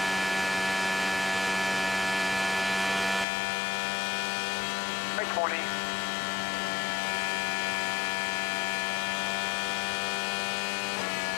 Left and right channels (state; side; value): drops out; right; at 3.2 s